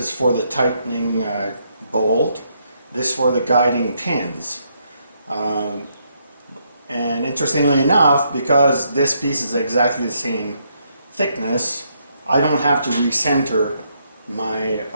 for the tightening bolt, this for the guiding pins. And interestingly enough, because this piece is exactly the same thickness, I don't have to recenter my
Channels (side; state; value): both; inverted; correlation -0.75